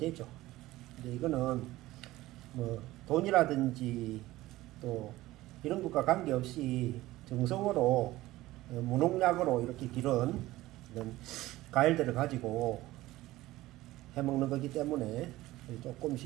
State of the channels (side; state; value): left; quieter; 17.3 dB